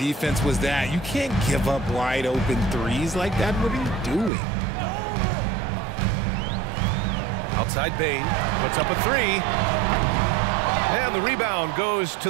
was that? You can't give up wide open threes like that. What are you doing? Outside Bain, puts up a three. And the rebound goes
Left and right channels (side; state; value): left; drops out; at 4.3 s